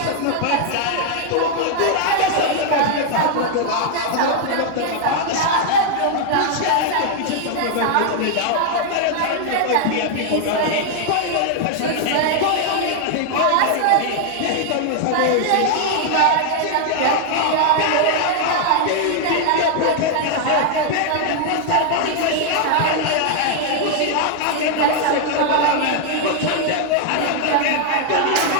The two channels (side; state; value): both; different; correlation 0.00